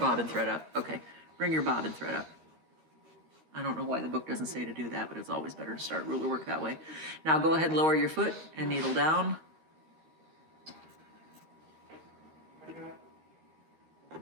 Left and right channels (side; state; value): left; late; 13 ms